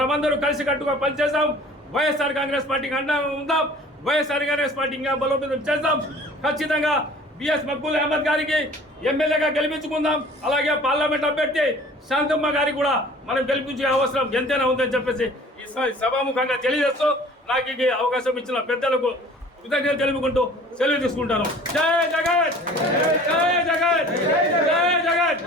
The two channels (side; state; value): both; normal; correlation 0.48